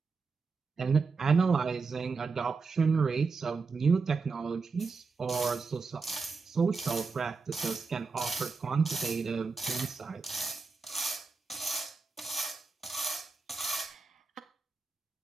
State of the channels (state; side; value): quieter; left; 4.6 dB